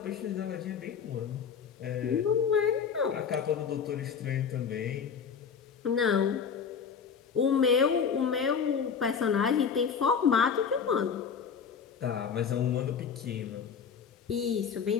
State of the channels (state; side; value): quieter; right; 6.7 dB